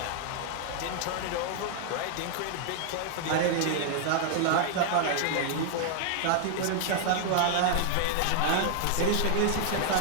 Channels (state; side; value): different; both; correlation 0.00